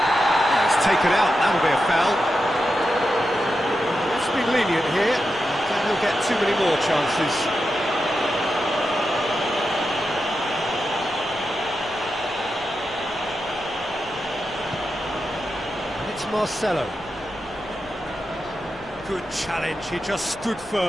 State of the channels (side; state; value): left; noise; rumble, 23 dB below the sound